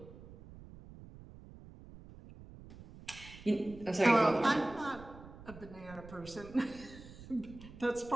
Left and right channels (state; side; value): noise; right; rumble, 17 dB below the sound